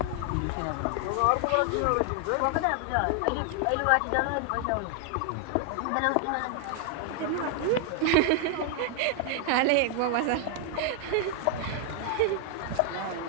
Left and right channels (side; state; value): both; different; correlation 0.00